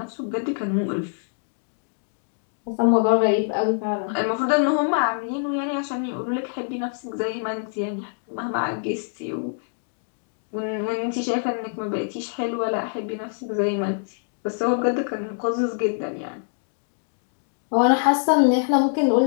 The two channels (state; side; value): silent; right; digital silence